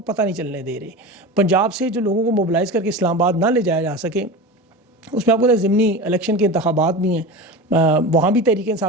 پتہ نہیں چلنے دے رہے. پنجاب سے جو لوگوں کو موبلائز کر کے اسلام آباد نہ لے جایا جا سکے، اس میں آپ کو ضمنی الیکشن کے انتخابات بھی ہیں، وہاں بھی تحریک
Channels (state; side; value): normal; both; correlation 0.28